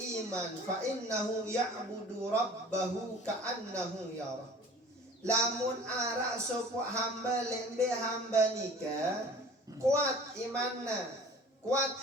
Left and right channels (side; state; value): both; normal; correlation 0.45